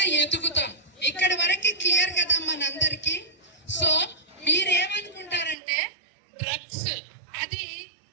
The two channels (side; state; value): left; drops out; at 5.6 s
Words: ఎదుగుతాం. ఇక్కడ వరకు క్లియర్ కదా మనందరికి. సో మీరేమనుకుంటారంటే డ్రగ్స్ అది